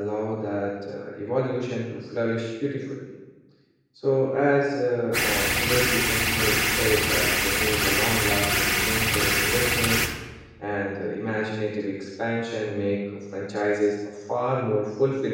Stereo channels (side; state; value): both; identical; correlation 1.00